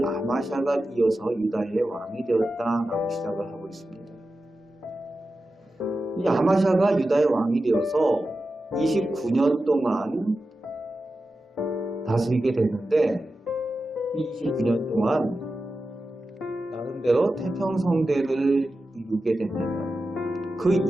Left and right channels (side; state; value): both; normal; correlation 0.92